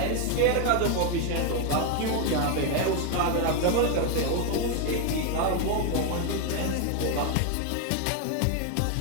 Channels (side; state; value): both; different; correlation 0.01